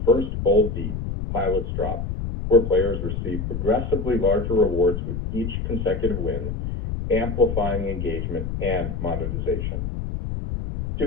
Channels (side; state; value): left; noise; rumble, 4 dB below the sound